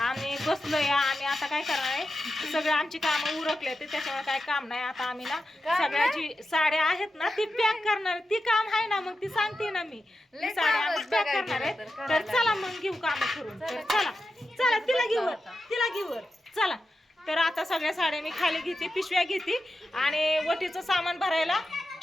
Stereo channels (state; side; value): normal; both; correlation 0.90